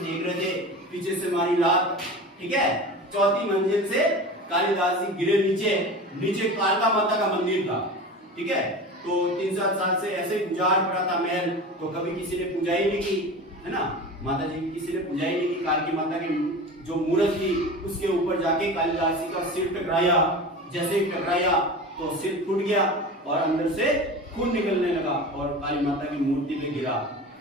रहे थे, पीछे से मारी लात, ठीक है। 4थी मंजिल से कालिदास जी गिरे नीचे कालका माता का मंदिर था, ठीक है। तो 3-7 साल से ऐसे ही गुजार पड़ा था महल, तो कभी किसी ने पूजा ही नहीं की, है ना, माता जी की किसी ने पूजा ही नहीं की। कालकी माता की जो मूर्त थी उसके ऊपर जाके कालिदास जी का सिर टकराया, जैसे ही टकराया तो सिर फूट गया और अंदर से खून निकलने लगा और काली माता की मूर्ति पे गिरा।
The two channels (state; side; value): normal; both; correlation 0.32